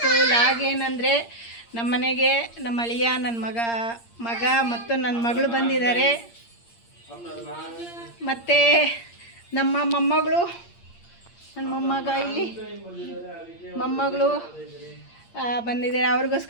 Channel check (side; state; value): right; late; 8.6 ms